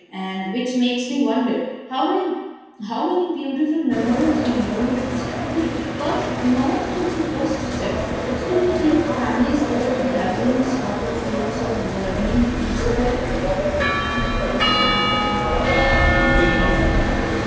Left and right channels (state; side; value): identical; both; correlation 1.00